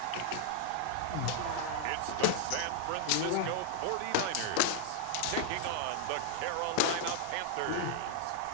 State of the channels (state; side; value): different; both; correlation 0.00